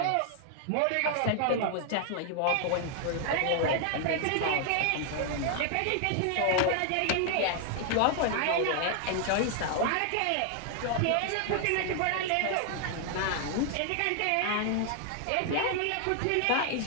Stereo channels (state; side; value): different; both; correlation 0.00